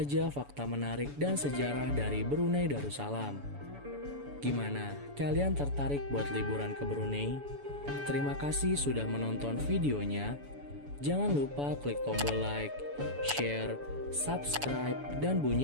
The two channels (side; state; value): left; late; 7.0 ms